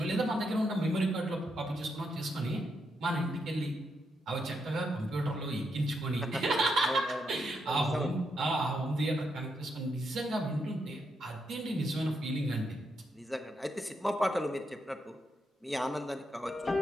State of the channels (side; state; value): both; normal; correlation 0.81